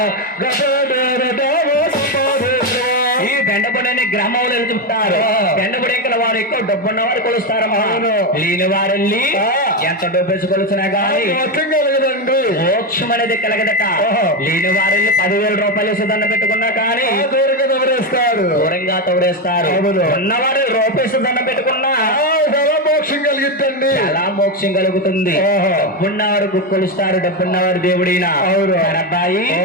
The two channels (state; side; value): normal; both; correlation 0.10